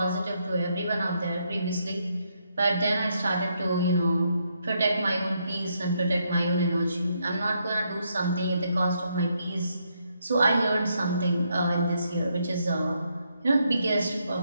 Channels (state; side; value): inverted; both; correlation -0.77